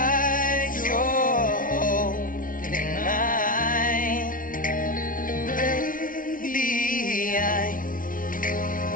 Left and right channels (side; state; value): right; late; 0.39 ms